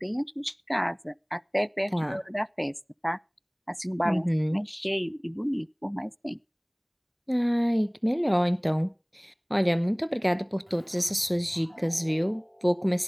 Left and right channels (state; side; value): identical; both; correlation 1.00